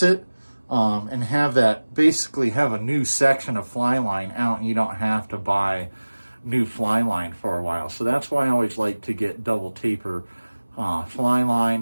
it, and basically have a new section of fly line out, and you don't have to buy new fly line for a while. So that's why I always like to get double taper fly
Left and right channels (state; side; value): inverted; both; correlation -1.00